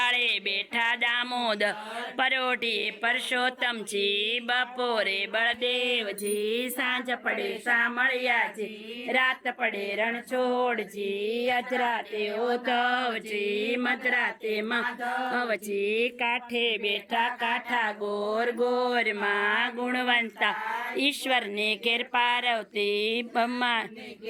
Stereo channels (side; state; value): both; identical; correlation 1.00